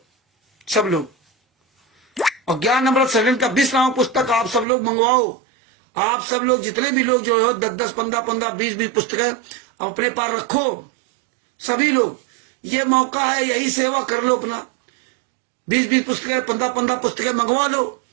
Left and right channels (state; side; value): drops out; left; at 4.7 s